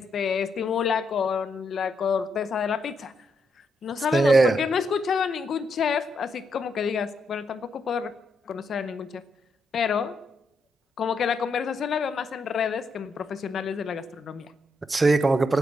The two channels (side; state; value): both; normal; correlation 0.79